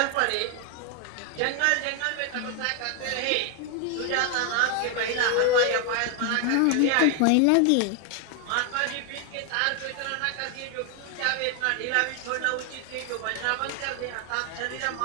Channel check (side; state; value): both; different; correlation 0.00